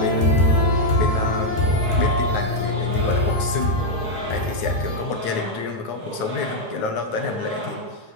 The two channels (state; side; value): late; right; 9.4 ms